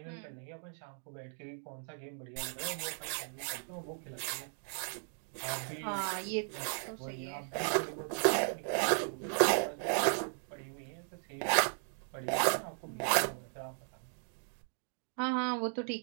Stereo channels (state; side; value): silent; left; 53 dB below the other